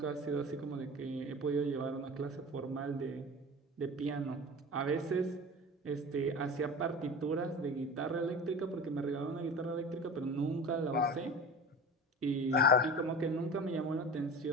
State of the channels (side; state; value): both; normal; correlation 0.34